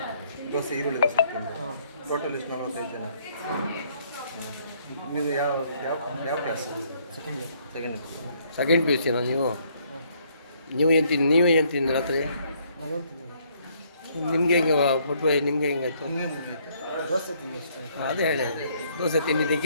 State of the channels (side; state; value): both; inverted; correlation -0.66